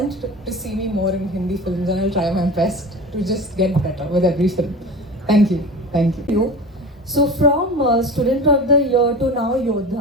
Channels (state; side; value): normal; both; correlation 0.33